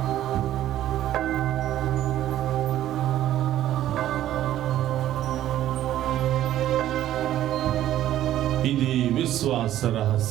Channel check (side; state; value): left; quieter; 12.8 dB